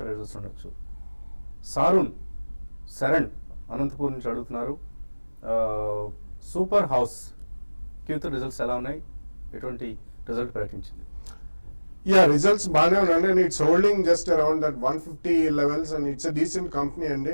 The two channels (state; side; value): inverted; both; correlation -1.00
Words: రిజల్ట్స్ ఉండొచ్చు. శరణ్ అనంతపూర్ నుంచి అడుగుతున్నారు. సూపర్ హౌస్ Q3 రిజల్ట్స్ ఎలా ఉన్నాయి? ఎటువంటి రిజల్ట్ ప్రకటించింది? Yeah, results బాగానే ఉన్నాయి and it's holding just around that 150 levels and it's a decent company